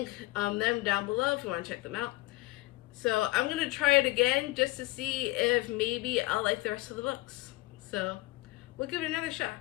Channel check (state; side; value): quieter; right; 21.1 dB